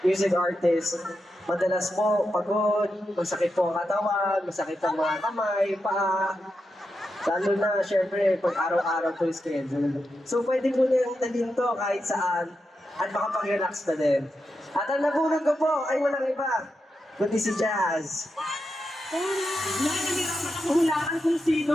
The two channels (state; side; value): normal; both; correlation 0.87